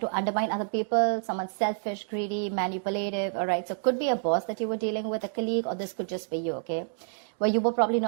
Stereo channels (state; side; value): silent; left; digital silence